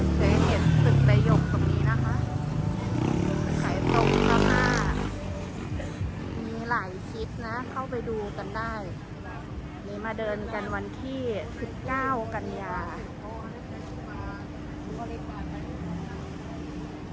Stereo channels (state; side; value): identical; both; correlation 1.00